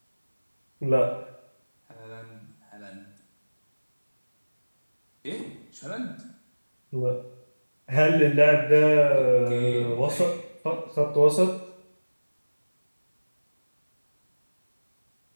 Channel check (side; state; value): both; inverted; correlation -1.00